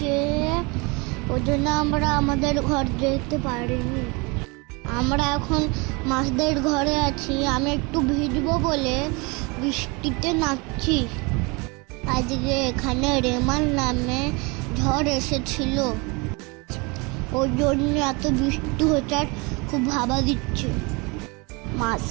ওই জন্য আমরা আমাদের ঘর যেতে পারিনি। আমরা এখন মাছদের ঘরে আছি। আমি একটু ভিজবো বলে বৃষ্টিতে নাচছি। আজকে এখানে রেমাল নামে ঝড় এসেছিল, ওই জন্য এত বৃষ্টি হচ্ছে আর খুব ভাবা দিচ্ছে।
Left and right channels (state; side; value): quieter; left; 28.2 dB